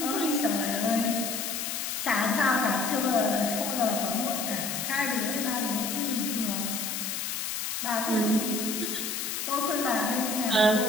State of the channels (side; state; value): left; noise; hiss, 3 dB below the sound